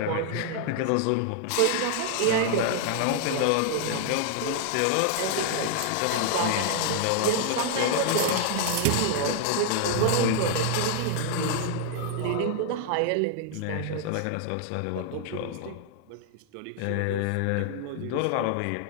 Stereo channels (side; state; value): both; different; correlation 0.00